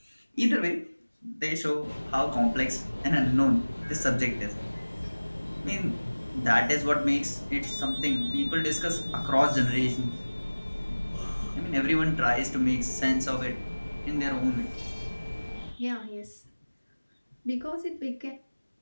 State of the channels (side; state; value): both; inverted; correlation -1.00